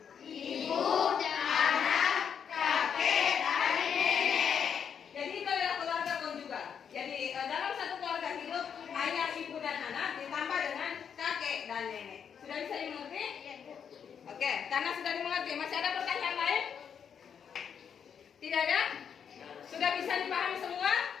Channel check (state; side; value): quieter; right; 7.5 dB